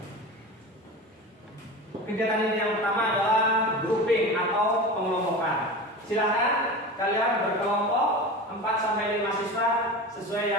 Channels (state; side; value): normal; both; correlation 0.30